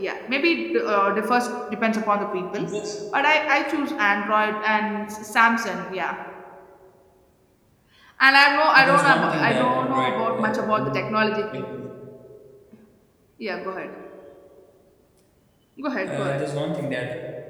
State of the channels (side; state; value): both; identical; correlation 1.00